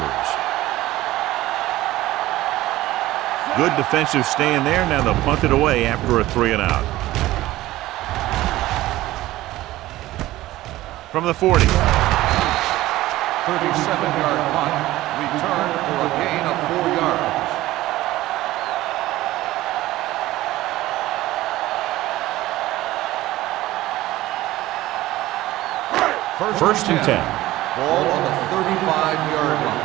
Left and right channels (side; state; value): left; quieter; 16.5 dB